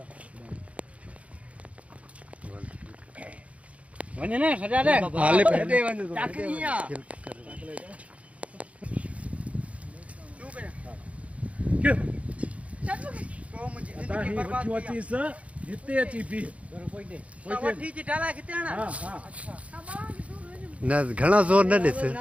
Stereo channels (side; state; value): left; late; 0.065 ms